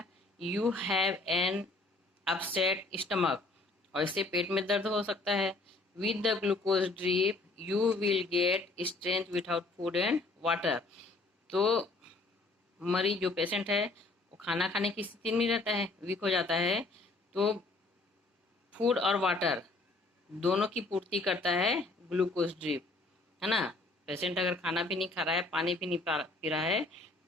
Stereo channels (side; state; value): right; quieter; 3.2 dB